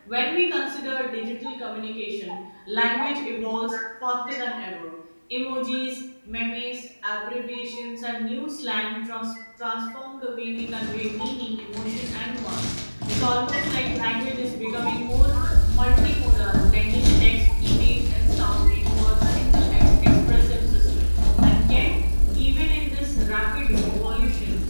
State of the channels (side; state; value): both; inverted; correlation -1.00